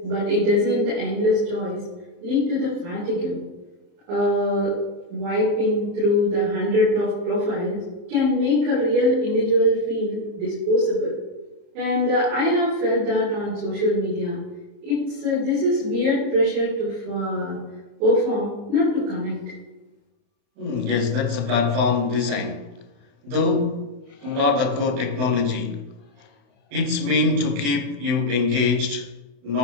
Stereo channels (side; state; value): left; late; 35 ms